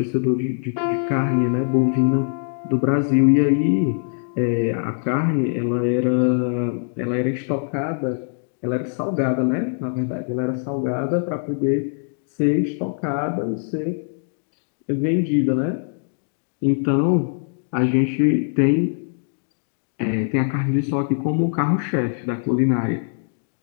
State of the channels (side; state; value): right; silent; digital silence